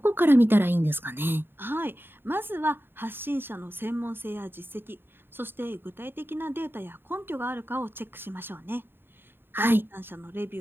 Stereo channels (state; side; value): late; left; 0.10 ms